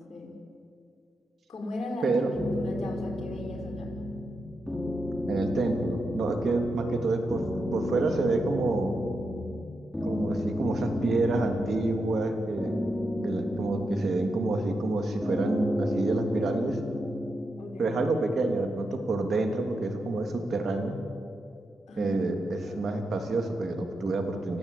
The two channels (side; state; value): both; normal; correlation 0.86